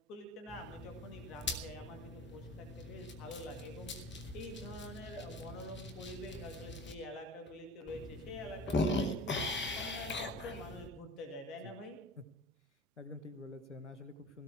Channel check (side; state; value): both; normal; correlation 0.40